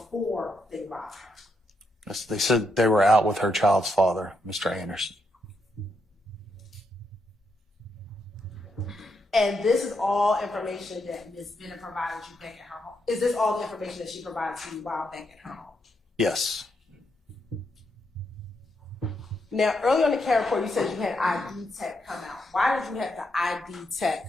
they robbed her? Yes, they said they were out with her child's father, Mr. Anderson. And this is all information that Ms. Bennett provided you back at her home. Is this all the information that she provided to you while back at her home? Yes. Now, earlier on the CARE report, you said you had ID tech come out. Why did you have the ID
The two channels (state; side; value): normal; both; correlation 0.80